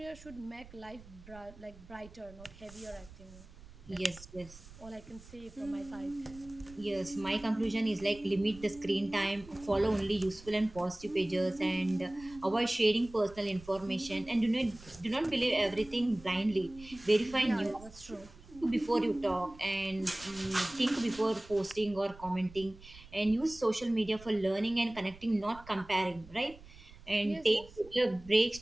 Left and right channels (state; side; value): noise; right; rumble, 20 dB below the sound